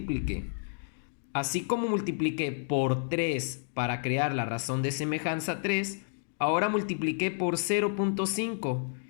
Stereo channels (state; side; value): silent; right; digital silence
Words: Así como multipliqué por 3 para crear la razón de semejanza 3, ahora multipliqué por 0.5.